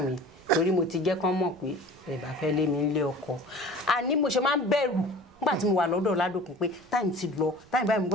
mi torí mo ti jẹ́ kán mọ̀ pé ẹ bá fẹ́ lé mi nílé ọkọ àní mo ṣe máa ń bẹ̀rù nígbà tí mo wà lọ́dọ̀ Ládòkun pé táìmù ti lọ táìmù báyìí mo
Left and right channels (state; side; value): noise; right; rumble, 28 dB below the sound